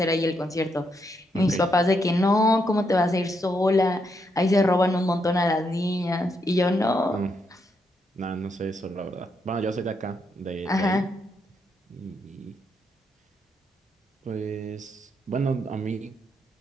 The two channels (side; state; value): both; normal; correlation 0.79